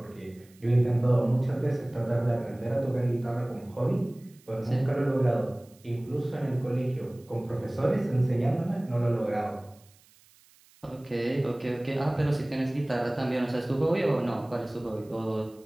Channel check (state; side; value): noise; right; hiss, 29 dB below the sound